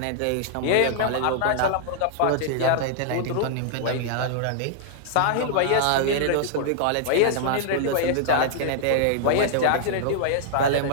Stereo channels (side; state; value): both; different; correlation -0.01